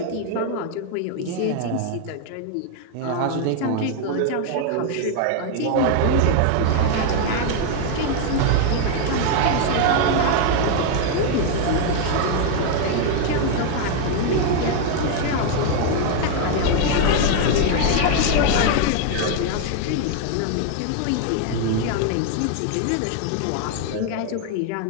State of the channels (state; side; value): different; both; correlation 0.00